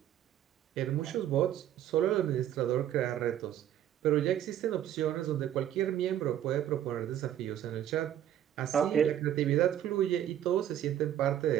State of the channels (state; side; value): quieter; left; 11.0 dB